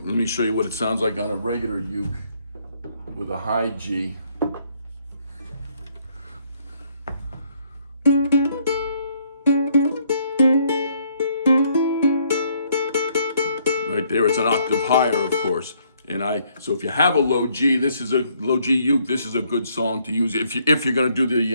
Let me show you what it sounds like on a regular uke with a high G. Right there, it's an octave higher, of course. So if you have a low G, this is a low G uke. This is a good song to use if you're going to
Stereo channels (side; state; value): both; inverted; correlation -0.68